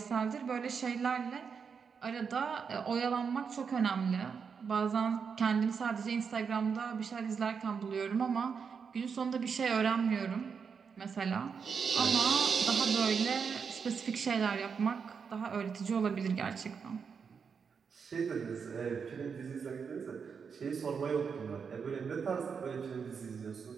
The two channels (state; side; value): quieter; left; 6.1 dB